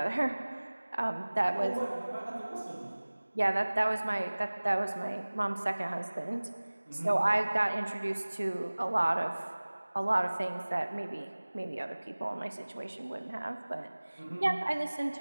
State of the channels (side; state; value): both; inverted; correlation -1.00